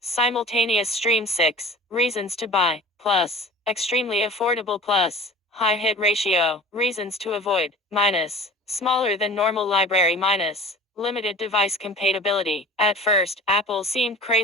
Simultaneous stream 6. Reasons to buy. Plus. Extremely affordable Plus. High hit ratio. Reasons to avoid. Minus. Smaller than normal library minus. Limited device compatibility. At first, Apple seemed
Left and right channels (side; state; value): both; normal; correlation 0.41